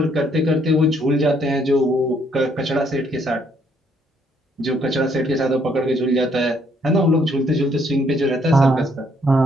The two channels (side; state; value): both; normal; correlation 0.68